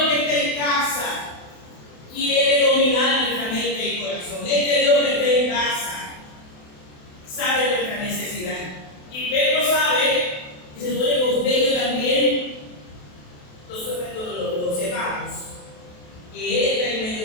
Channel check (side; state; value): right; late; 28 ms